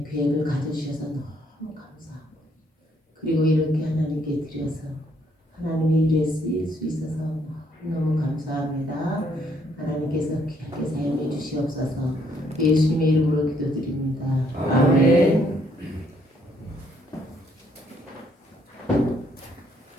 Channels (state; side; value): normal; both; correlation 0.69